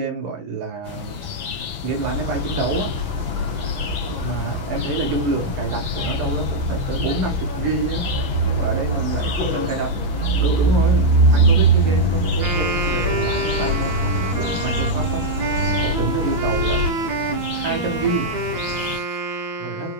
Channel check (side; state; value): left; late; 12 ms